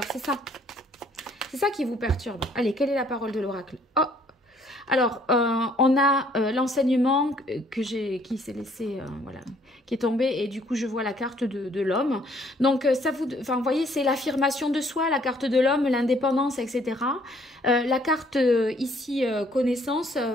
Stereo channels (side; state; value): both; normal; correlation 0.62